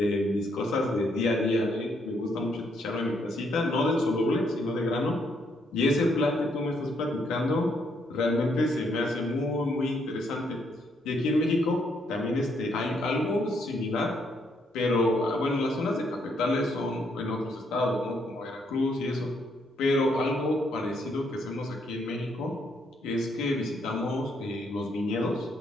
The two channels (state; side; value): normal; both; correlation 0.73